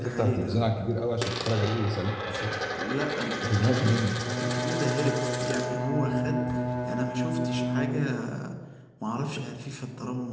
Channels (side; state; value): both; identical; correlation 1.00